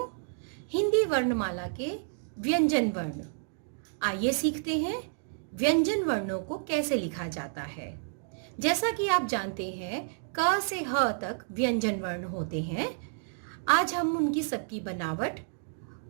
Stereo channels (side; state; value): left; silent; digital silence